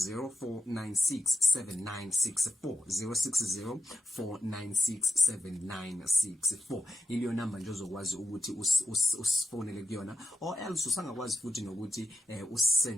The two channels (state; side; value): normal; both; correlation 0.90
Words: 0604967964 iliyo number nje ozokwazi ukuthi usifonele kuyona or else usangakwazi futhi nokuthi